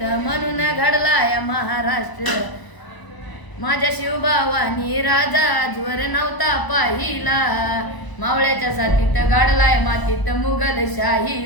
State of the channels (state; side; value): late; right; 1.0 ms